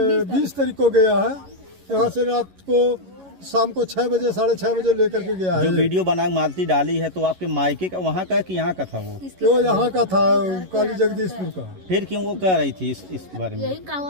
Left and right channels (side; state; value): left; late; 11 ms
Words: 20 तारीख को गया है यहाँ से। रात को शाम को 6 बजे 6:30 बजे लेकर के गया है। जो वीडियो बना मालती डाली है तो आपके मायके का वहाँ का कि यहाँ का था? वो यहाँ का था, काली जगदीशपुर का। फिर क्यों वो कह रही थी इस बारे में? यही